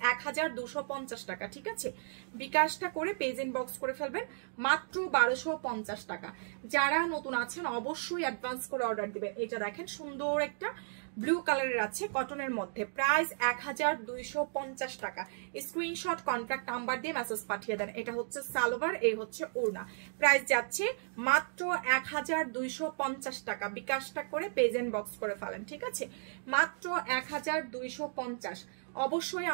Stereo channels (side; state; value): left; silent; digital silence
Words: 1250 টাকা। ঠিক আছে, বিকাশটা করে পেজ ইন বক্স করে ফেলবেন। মাত্র 1250 টাকা। যারা নতুন আছেন অবশ্যই অ্যাডভান্স করে অর্ডার দিবেন। এটা দেখেন সুন্দর একটা ব্লু কালারের আছে, কটনের মধ্যে। প্রাইস 1250 টাকা। স্ক্রিনশট, কন্ট্যাক্ট নাম্বার দিয়ে মেসেজ পাঠিয়ে দেন। এটা হচ্ছে সালোয়ার, এই হচ্ছে ওড়না। প্রাইস যাচ্ছে মাত্র 1250 টাকা। বিকাশটা করে পেজ এন্ড বক্স করে ফেলেন। ঠিক আছে, মাত্র 1250। অবশ্যই